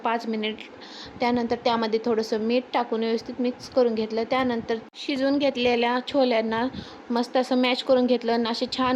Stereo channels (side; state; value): both; identical; correlation 1.00